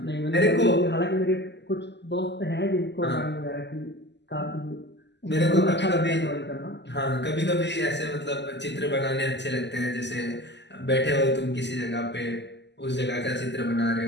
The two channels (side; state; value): right; late; 0.51 ms